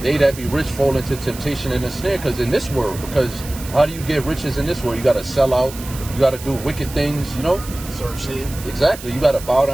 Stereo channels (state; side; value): noise; right; hiss, 14 dB below the sound